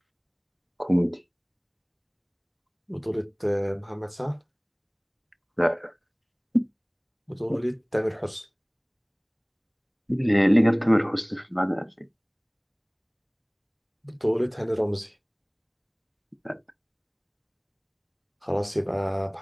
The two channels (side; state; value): both; identical; correlation 1.00